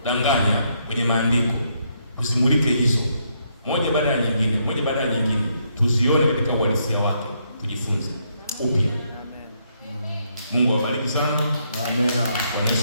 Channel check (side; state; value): both; inverted; correlation -0.75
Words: kwenye maandiko. Tusimulike hizo moja baada ya nyingine, tuzione katika uhalisia wake, tujifunze upya. Mungu awabariki sana. Amina. Kwa